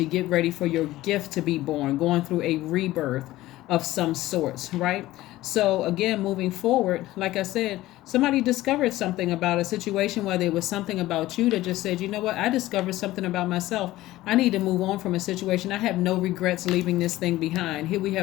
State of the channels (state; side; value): quieter; right; 16.5 dB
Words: get ready for your gift to be born, going through a rebirth of some sorts, right? So again, moving forward, like I said, somebody discovered something about a situation, whether it was something about you that just said, you know what, I discovered something about myself. I need to move on from a situation. I have no regrets leaving this thing behind. Here we